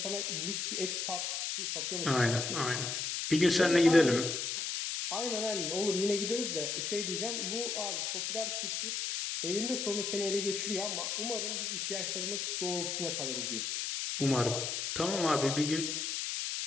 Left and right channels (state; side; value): noise; left; hiss, 2 dB below the sound